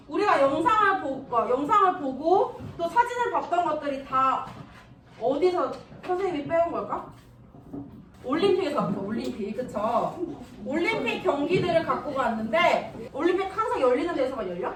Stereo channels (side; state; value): both; identical; correlation 1.00